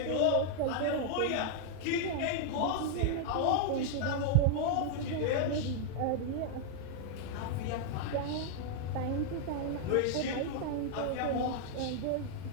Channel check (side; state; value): both; different; correlation -0.01